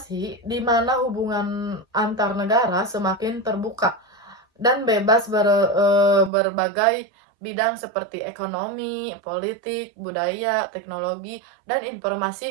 di mana hubungan antar negara semakin terbuka dan bebas berbagai bidang seperti ekonomi, politik, budaya, teknologi, dan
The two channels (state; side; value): drops out; left; at 6.3 s